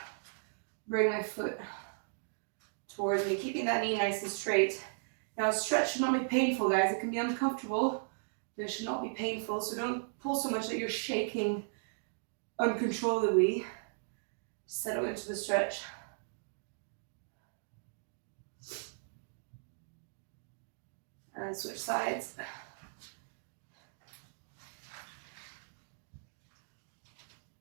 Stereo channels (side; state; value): left; silent; digital silence